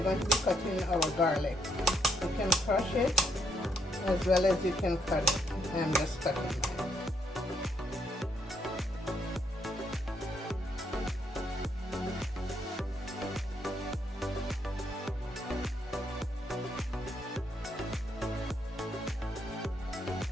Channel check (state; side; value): normal; both; correlation 0.74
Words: going to be cutting our garlic. You can crush it as well as you can cut it. I'm just cutting mine.